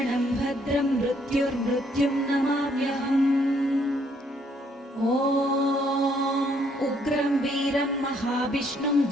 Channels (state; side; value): normal; both; correlation 0.68